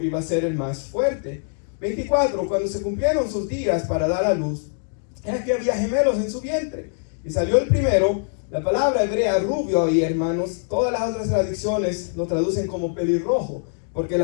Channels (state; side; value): silent; right; digital silence